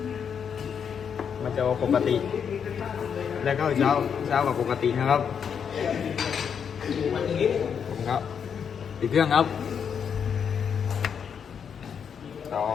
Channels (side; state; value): right; quieter; 7.3 dB